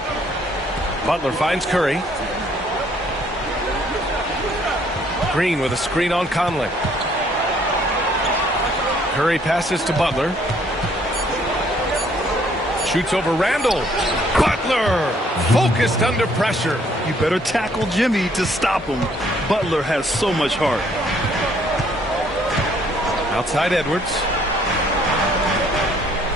Butler finds Curry. Green with a screen on Conley. Curry passes to Butler. Shoots over Randall. Butler focused under pressure. You better tackle Jimmy to stop him. Butler has so much heart. Outside Edwards.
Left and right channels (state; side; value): normal; both; correlation 0.64